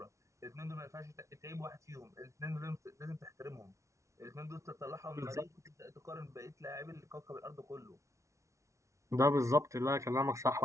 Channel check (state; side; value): late; left; 0.14 ms